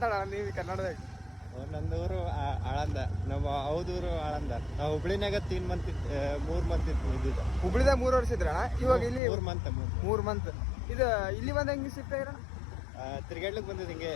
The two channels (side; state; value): right; drops out; at 9.2 s